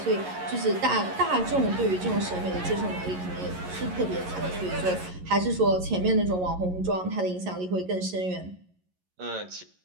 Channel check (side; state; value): left; late; 11 ms